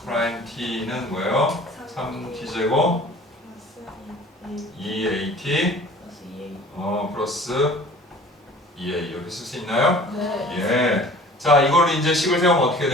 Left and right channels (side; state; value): both; normal; correlation 0.47